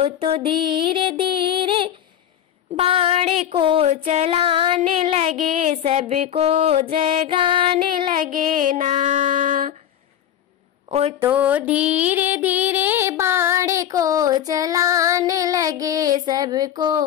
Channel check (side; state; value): right; quieter; 10.4 dB